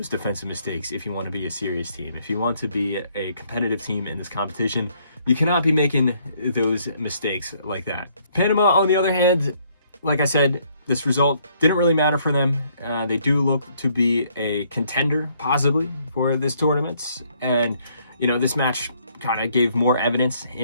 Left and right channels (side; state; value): both; inverted; correlation -0.67